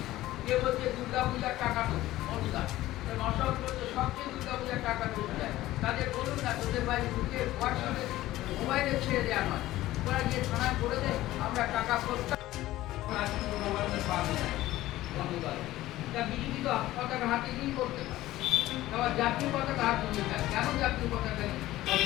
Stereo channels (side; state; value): right; quieter; 15.9 dB